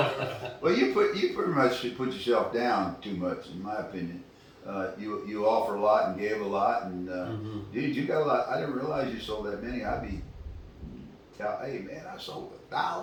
do. Well, you pretty much put yourself down too much, in my opinion. You offer a lot and gave a lot, and dude, you got a lot. I didn't realize you sold that many. I'd be, hey man, I sold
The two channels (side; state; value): both; identical; correlation 1.00